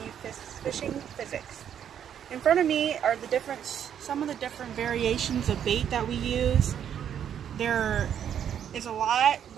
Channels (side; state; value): left; quieter; 9.1 dB